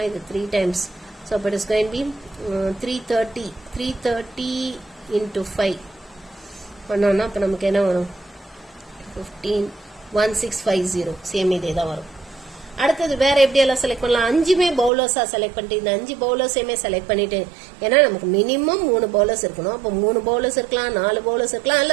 இது 3 times. So it is going to be 330 into 5 பண்ணோம்னா அப்போ நமக்கு என்ன வரும்? 1650. Same இதே தான் வரும். அடுத்தது வேற எப்படி எல்லாம் செலக்ட் பண்ணலாம்? 5மே பவுலர்ஸா செலக்ட் பண்ணிட்டு இந்த 5 பவுலர்ஸையுமே செலக்ட் பண்ணிட்டு, ஏன்னா நமக்கு மினிமம் 3 பவுலர்ஸ் இருக்கணும். அப்போ 3 பவுலர்ஸ் இருக்கலாம், 4 பவுலர்ஸ் இருக்கலாம்,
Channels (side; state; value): left; drops out; at 14.9 s